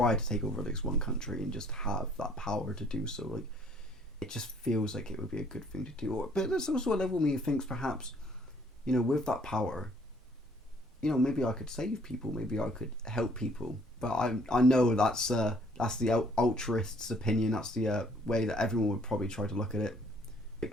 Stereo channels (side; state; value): both; normal; correlation 0.61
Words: to take over at least one country and just have that power to do so. Like, it just feels like it would be a good thing to do. But there's also a level of me who thinks perhaps, you know, with that power, you know, maybe I could save people, maybe I could help people. But I know that's the altruist's opinion. That's the way that everyone would probably try to look at it.